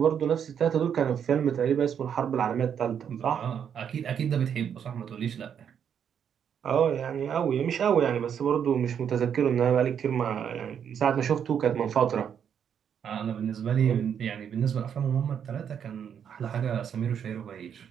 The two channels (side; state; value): left; quieter; 8.2 dB